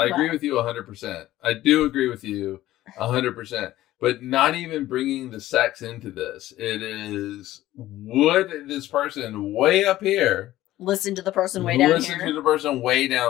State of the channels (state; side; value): quieter; right; 15.0 dB